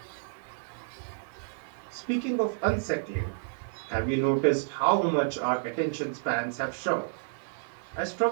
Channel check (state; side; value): silent; left; digital silence